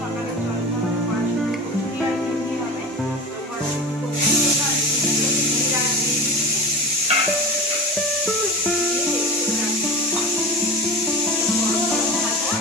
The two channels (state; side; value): normal; both; correlation 0.31